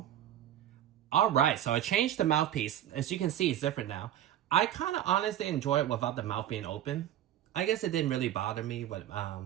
All right, so I changed the mouthpiece. As you can see, it's different now. I kind of honestly enjoy it without the mouth being open. I guess it didn't really bother me with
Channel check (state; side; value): quieter; left; 11.7 dB